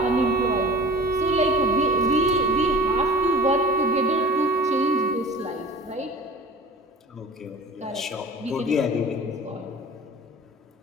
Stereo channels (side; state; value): both; normal; correlation 0.41